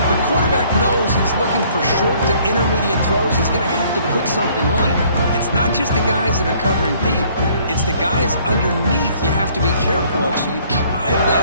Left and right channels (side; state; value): both; inverted; correlation -0.60